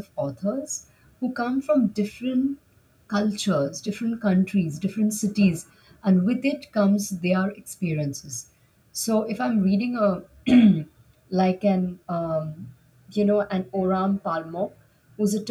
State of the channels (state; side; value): identical; both; correlation 1.00